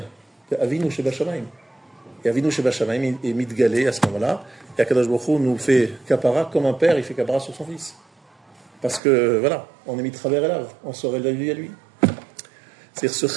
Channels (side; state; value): left; drops out; at 9.0 s